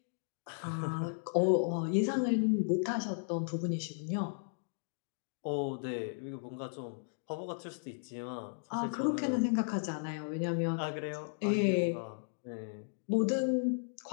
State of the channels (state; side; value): silent; right; digital silence